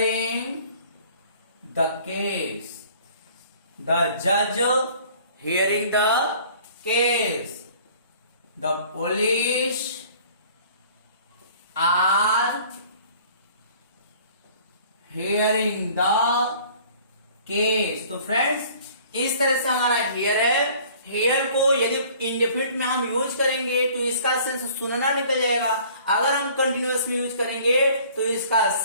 the case, the जज hearing the case, the police are hearing the case। तो फ्रेंड्स इस तरह से हमारा हेयर है, हेयर को यदि इंडेफिनिट में हम यूज करेंगे तो इसका सेंस सुनना निकल जाएगा, अगर हम कंटिन्यूअस में यूज करेंगे तो इसका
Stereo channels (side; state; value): both; inverted; correlation -0.52